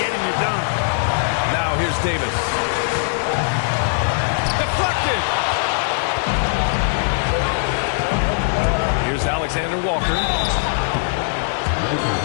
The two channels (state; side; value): silent; right; digital silence